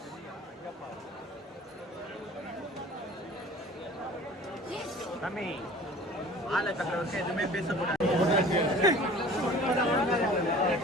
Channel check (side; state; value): both; normal; correlation 0.45